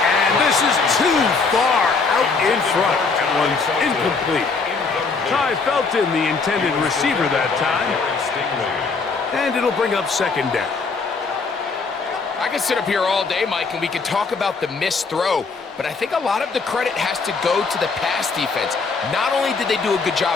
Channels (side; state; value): right; quieter; 4.5 dB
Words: this is too far out in front. That one's incomplete. Ty Felton, the intended receiver that time. And it'll bring up second down. I could sit up here all day, Mike, and we could talk about the missed throw, but I think a lot of the credit has to go to the pass defense. Not only did they do a good